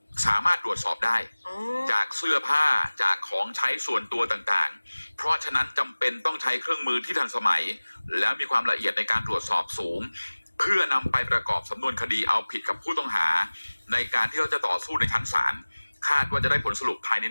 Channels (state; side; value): inverted; both; correlation -1.00